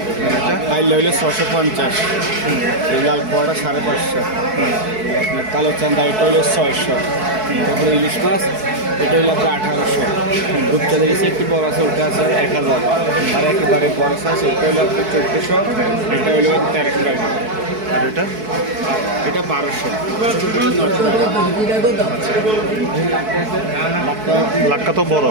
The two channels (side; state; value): left; late; 4.6 ms